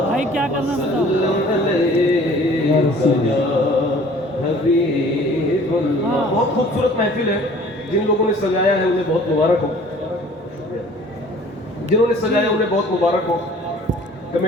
भाई, क्या करना है बताओ। हाँ। बहुत खूबसूरत महफिल है। जिन लोगों ने सजाया है उन्हें बहुत मुबारक हो, जिन्होंने सजाया उन्हें बहुत मुबारक हो,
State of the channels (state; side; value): normal; both; correlation 0.50